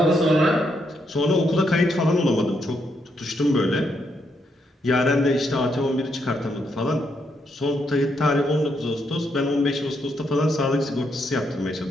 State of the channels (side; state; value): both; normal; correlation 0.78